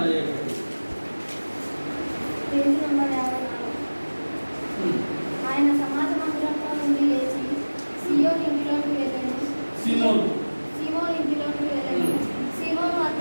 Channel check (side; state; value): both; inverted; correlation -1.00